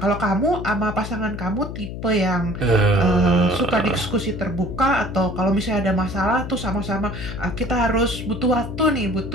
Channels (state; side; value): noise; left; hum, 8 dB below the sound